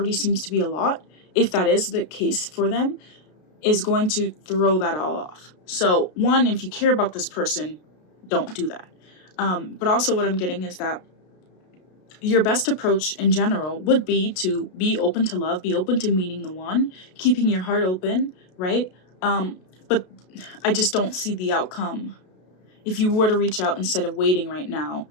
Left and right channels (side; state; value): right; late; 33 ms